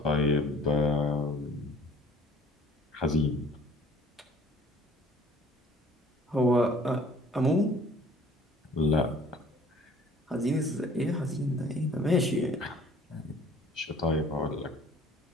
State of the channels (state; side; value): normal; both; correlation 0.52